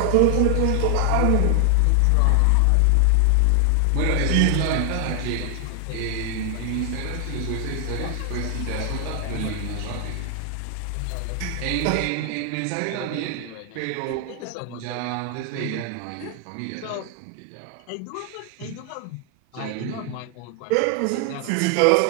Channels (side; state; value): both; different; correlation 0.00